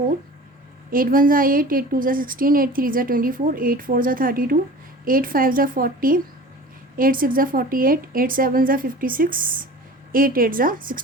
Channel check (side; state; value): both; normal; correlation 0.40